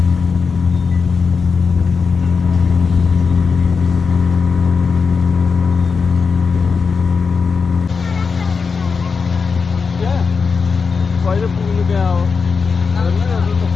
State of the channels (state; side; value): quieter; right; 5.2 dB